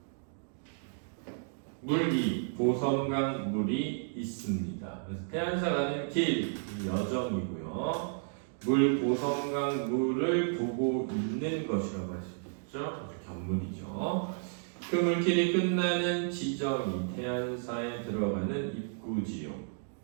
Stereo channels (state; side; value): silent; left; digital silence